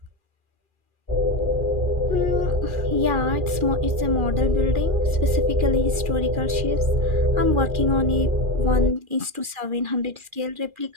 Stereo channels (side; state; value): left; late; 2.4 ms